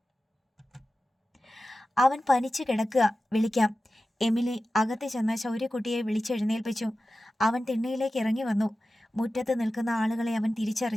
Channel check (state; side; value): normal; both; correlation 0.94